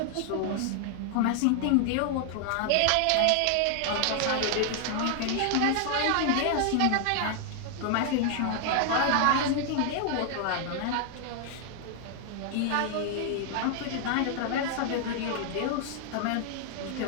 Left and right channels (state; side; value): different; both; correlation 0.00